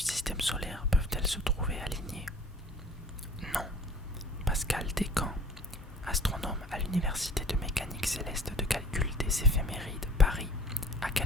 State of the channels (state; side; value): normal; both; correlation 0.49